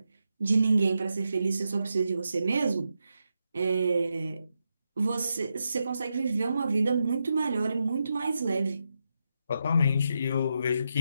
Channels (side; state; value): both; inverted; correlation -0.85